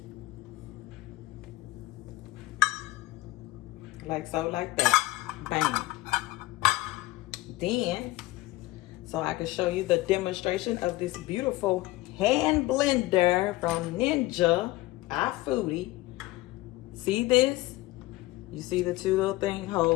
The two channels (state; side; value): quieter; right; 18.9 dB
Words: Like so, like that. Bang. Then, so I can show you the demonstration of this beautiful hand blender from Ninja Foodi. See this? You see the two little